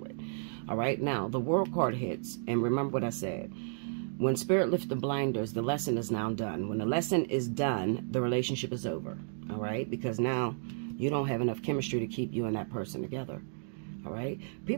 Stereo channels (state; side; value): silent; left; digital silence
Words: with. All right, now, the World card hits. And remember what I said. When Spirit lifts the blinders, the lesson is now done. When the lesson is done, the relationship is over, all right? Because now you don't have enough chemistry to keep you and that person together. All right.